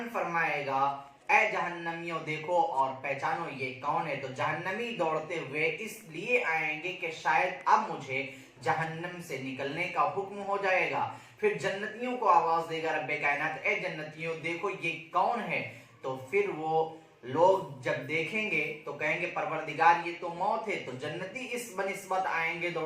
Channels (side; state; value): both; identical; correlation 1.00